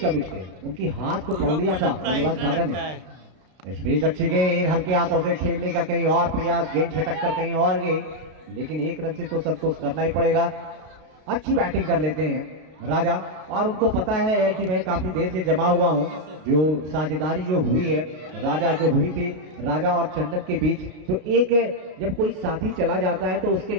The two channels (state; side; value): late; left; 32 ms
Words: थे, उनकी हाथ को पकड़ लिया था बल्लेबाज राजा ने। इस बीच अच्छी गेंद हल्के हाथों से खेलने का कहीं और प्रयास, गेंद छटक कर कहीं और गई, लेकिन एक रन से तो संतोष करना ही पड़ेगा। अच्छी बैटिंग कर लेते हैं राजा और उनको पता है कि मैं काफी देर से जमा हुआ हूं। जो साझेदारी जो हुई है राजा जो हुई थी राजा और चंदन के बीच, तो एक जब कोई साथी चला जाता है तो उसके